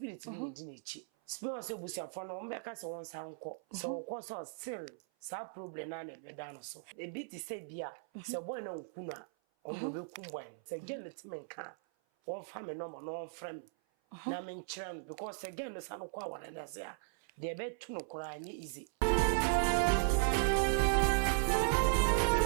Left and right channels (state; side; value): silent; left; 53 dB below the other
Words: bi ne di na echi spirit se busiafo no ombe ka se won san ko se won so still sa problem na na be dan so e bit say bia se boy na nkuna on do be kum boy se gen let men kan won fa me no mo no frame na men kyerem because again no san ko awara na se a de be tu no kora anye easy